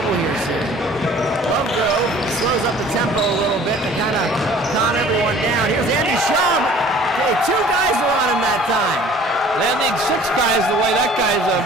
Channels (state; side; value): normal; both; correlation 0.50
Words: here soon. Lovegrove slows up the tempo a little bit to kind of calm everyone down. Here's Andy Shaw. Hey, 2 guys were on him that time. They need 6 guys the way that guy's